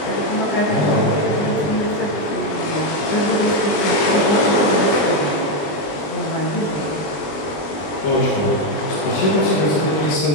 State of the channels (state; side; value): late; right; 20 ms